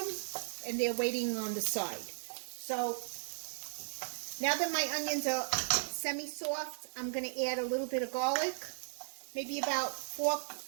and they're waiting on the side. So now that my onions are semi-soft, I'm going to add a little bit of garlic, maybe about 4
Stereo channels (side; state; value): left; silent; digital silence